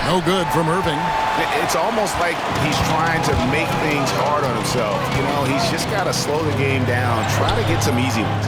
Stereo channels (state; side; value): identical; both; correlation 1.00